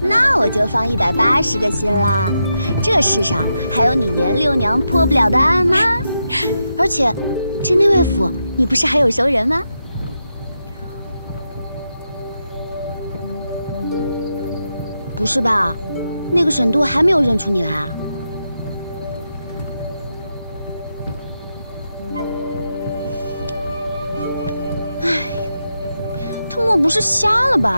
我就放180个心啦。这世上还有你严六娘破不了的案吗？而且，这内卫府你不是还有熟人吗？不是吧？那个沈都还没有认出你来啊？不是瞎了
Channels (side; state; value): both; inverted; correlation -0.86